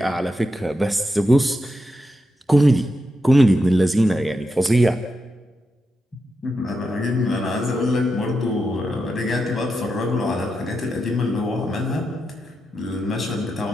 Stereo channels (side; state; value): both; normal; correlation 0.86